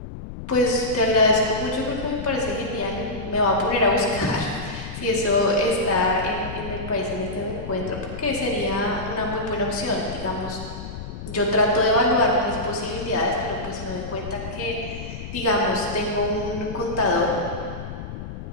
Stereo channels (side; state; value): left; noise; rumble, 9 dB below the sound